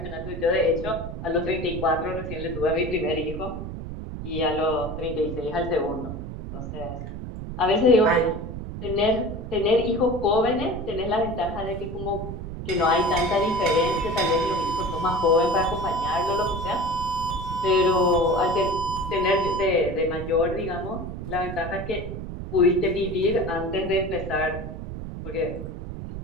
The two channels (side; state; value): right; noise; rumble, 8 dB below the sound